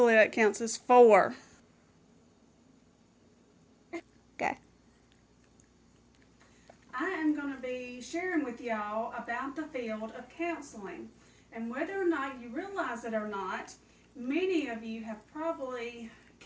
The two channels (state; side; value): identical; both; correlation 1.00